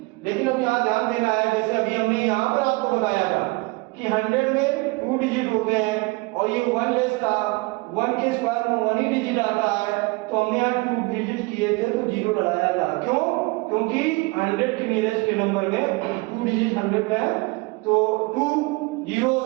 लेकिन अब यहाँ ध्यान देना है जैसे अभी हमने यहाँ पर आपको बताया था कि 100 में 2 डिजिट होते हैं और ये 1 लेस था, 1 के स्क्वायर में 1 ही डिजिट आता है, तो हमने यहाँ 2 डिजिट किए थे तो 0 लगाया था, क्यों क्योंकि 100 के नियरेस्ट के नंबर में 2 डिजिट 100 में है तो 2 जीरोस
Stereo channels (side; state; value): left; quieter; 25.7 dB